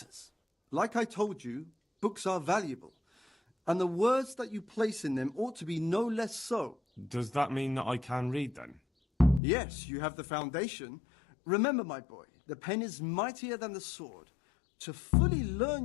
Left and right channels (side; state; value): right; drops out; at 9.4 s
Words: Like I told you, books are valuable, and the words that you place in them ought to be no less so. Does that mean that I can read then? Yes, you have the foundation. Remember, my boy, the pen is mightier than the sword. To fully